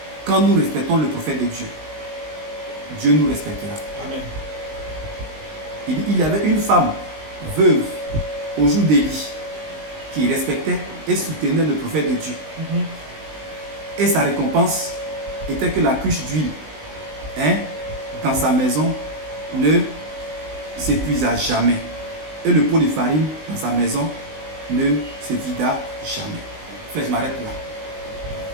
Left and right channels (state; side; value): late; left; 19 ms